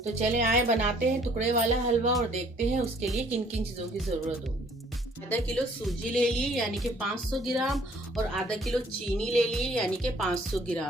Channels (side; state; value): both; normal; correlation 0.59